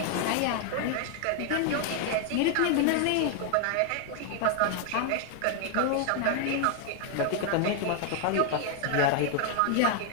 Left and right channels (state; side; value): different; both; correlation 0.00